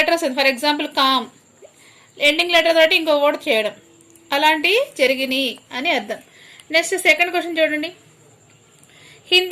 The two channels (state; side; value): identical; both; correlation 1.00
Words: వస్తుంది, for example calm, ending letter తోటి ఇంకో వర్డ్ చేయడం, అలాంటివి జరిగినాయి అని అర్థం. నెక్స్ట్ సెకండ్ క్వశ్చన్ చూడండి,